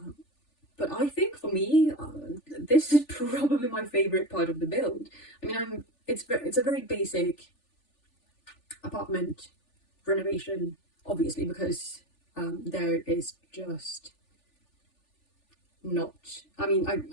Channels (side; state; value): right; late; 3.4 ms